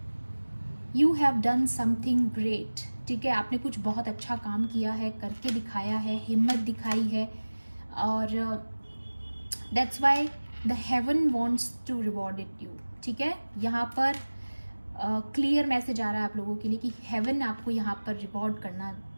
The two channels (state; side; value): inverted; both; correlation -1.00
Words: you have done something great, ठीक है। आपने कुछ बहुत अच्छा काम किया है, करके दिखाया है, हिम्मत दिखाई है, और that's why the heaven wants to reward it you, ठीक है। यहाँ पर क्लियर मैसेज आ रहा है आप लोगों के लिए कि हेवन आपको यहाँ पर